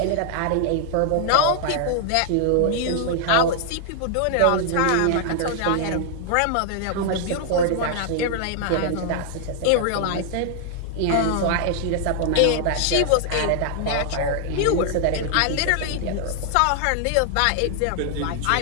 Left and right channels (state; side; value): different; both; correlation -0.01